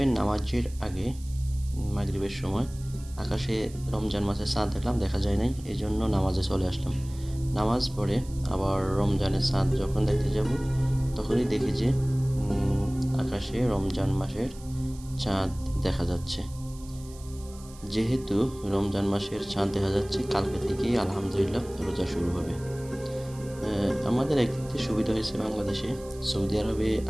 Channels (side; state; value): right; noise; hiss, 21 dB below the sound